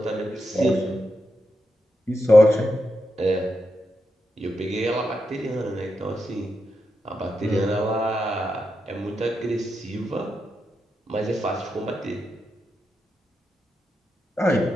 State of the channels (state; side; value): normal; both; correlation 0.86